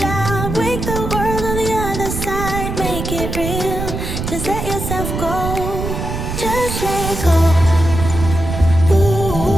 wake the world on the other side, make it real. Just let yourself go, just let go.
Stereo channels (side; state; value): right; noise; rumble, 5 dB below the sound